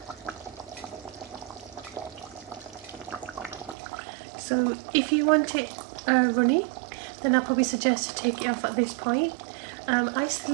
So if you want it runny, then I'll probably suggest to take it off at this point. I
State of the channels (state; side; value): drops out; left; at 3.8 s